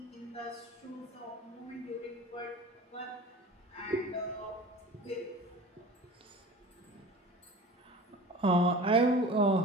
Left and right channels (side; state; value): both; normal; correlation 0.38